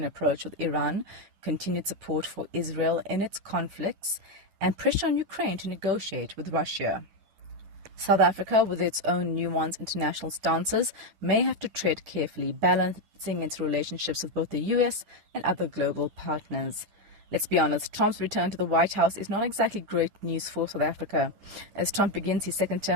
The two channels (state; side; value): late; left; 10 ms